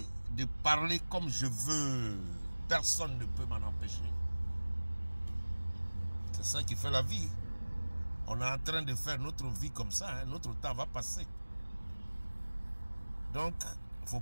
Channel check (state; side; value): inverted; both; correlation -1.00